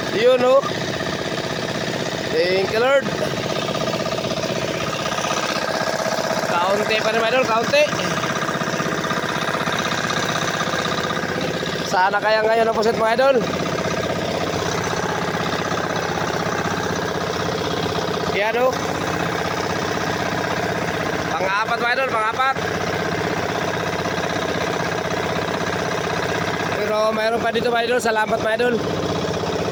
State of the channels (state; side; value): identical; both; correlation 1.00